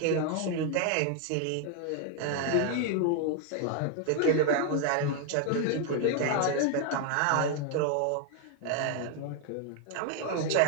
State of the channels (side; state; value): both; different; correlation 0.00